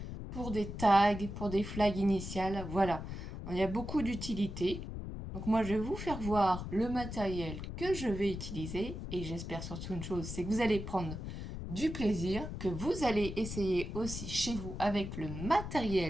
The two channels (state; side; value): noise; left; rumble, 7 dB below the sound